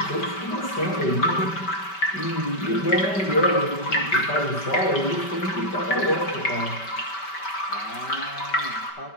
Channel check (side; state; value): right; late; 5.2 ms